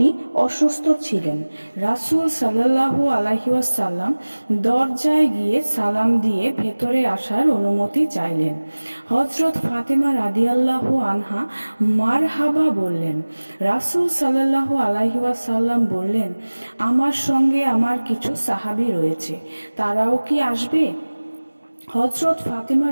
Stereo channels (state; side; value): inverted; both; correlation -1.00